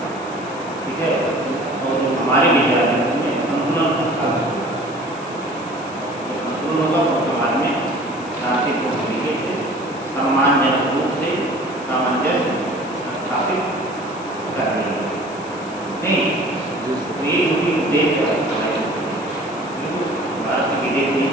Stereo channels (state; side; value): noise; left; hiss, 21 dB below the sound